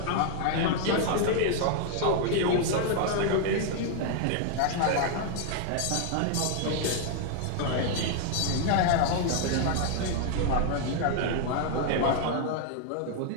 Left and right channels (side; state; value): both; different; correlation 0.00